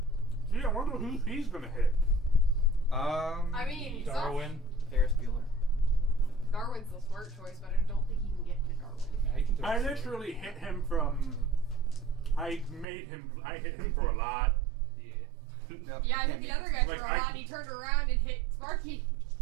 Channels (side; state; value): left; drops out; at 12.9 s